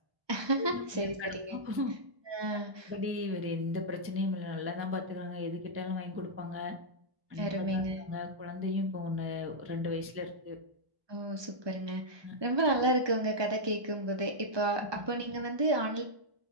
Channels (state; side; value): late; left; 1.2 ms